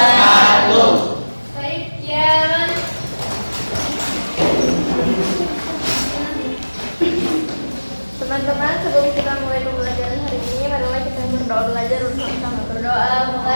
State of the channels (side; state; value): both; inverted; correlation -1.00